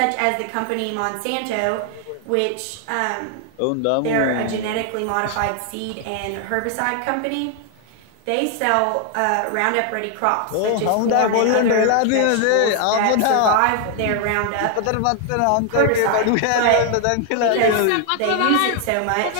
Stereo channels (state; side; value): different; both; correlation 0.00